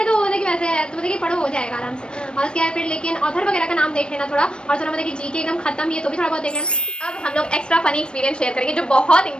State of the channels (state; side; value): late; right; 0.054 ms